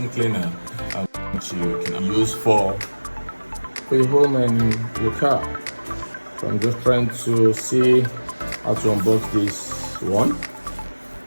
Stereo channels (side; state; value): both; inverted; correlation -1.00